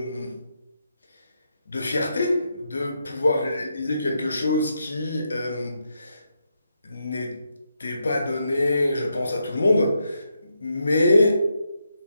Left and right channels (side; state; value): both; inverted; correlation -0.82